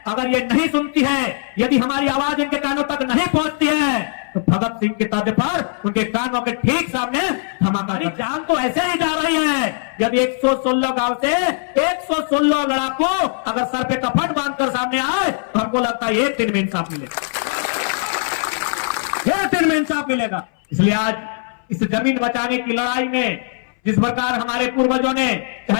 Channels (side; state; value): right; silent; 62 dB below the other